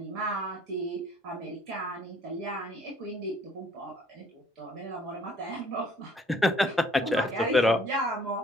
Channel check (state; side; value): normal; both; correlation 0.59